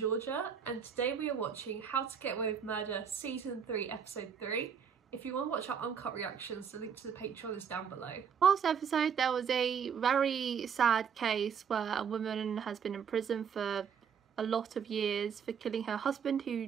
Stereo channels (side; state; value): left; quieter; 7.2 dB